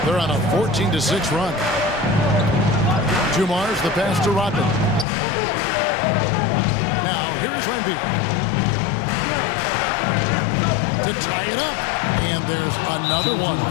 They're on a 14-6 run. Dumars, the pass to Rodman. Now, here's Lambier. To tie it up. And there's another one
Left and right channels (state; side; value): drops out; right; at 5.1 s